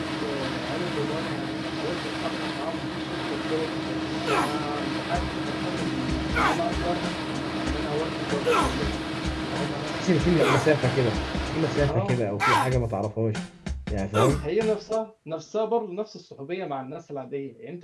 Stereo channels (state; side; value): identical; both; correlation 1.00